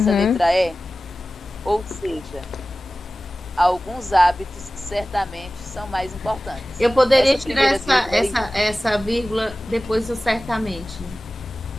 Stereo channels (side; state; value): both; normal; correlation 0.96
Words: Uhum. letra E, ou seja, alguns hábitos certamente são mais importantes. Eu poderia Essa tirar primeira vírgula essa vírgula depois do certamente.